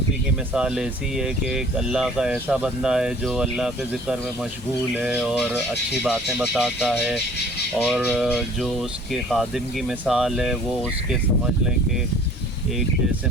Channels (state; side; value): normal; both; correlation 0.51